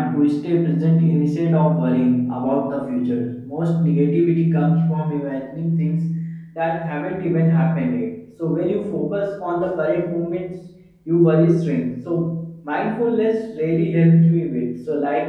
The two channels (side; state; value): both; identical; correlation 1.00